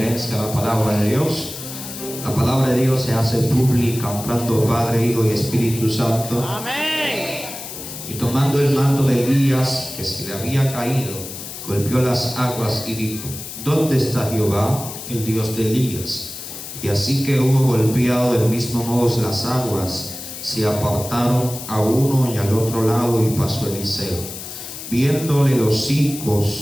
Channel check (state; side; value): noise; left; hiss, 10 dB below the sound